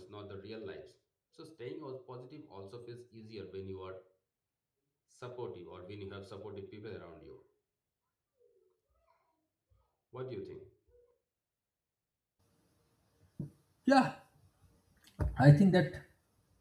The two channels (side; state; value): both; identical; correlation 1.00